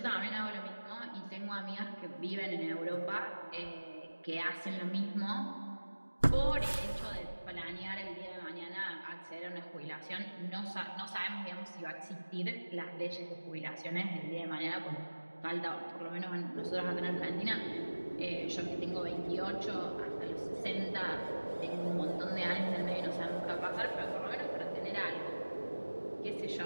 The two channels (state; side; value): inverted; both; correlation -1.00